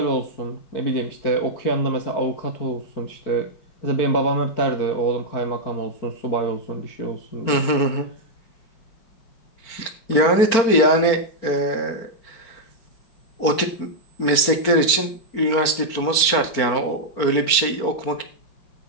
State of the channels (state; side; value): late; right; 4.5 ms